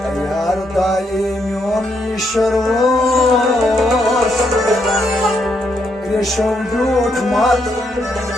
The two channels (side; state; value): both; normal; correlation 0.77